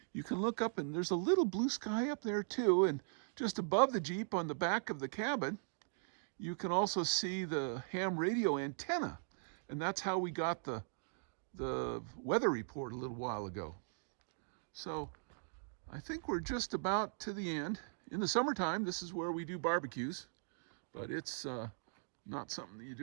you can look up and there's a little blue sky up there too, and just above the Jeep on the back of the cabin, you can also see the ham radio antenna, and that's how we got the weather report a little while ago. So I think we're just about to the end. In the summertime, this is where we do barbecues, but it's not something that you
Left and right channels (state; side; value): silent; left; digital silence